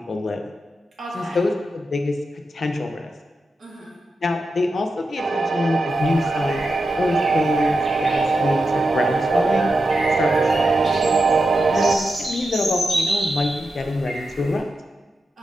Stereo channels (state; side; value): normal; both; correlation 0.88